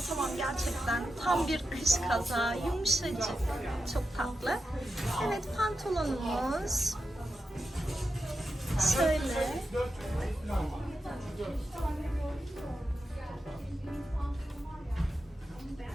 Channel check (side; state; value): both; normal; correlation 0.89